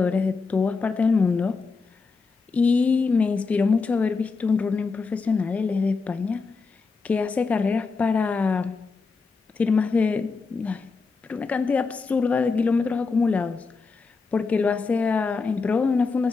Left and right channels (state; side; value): quieter; right; 4.5 dB